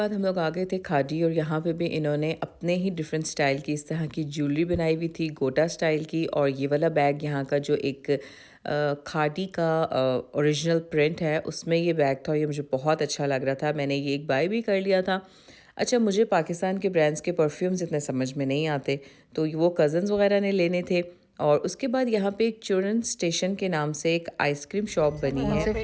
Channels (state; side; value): identical; both; correlation 1.00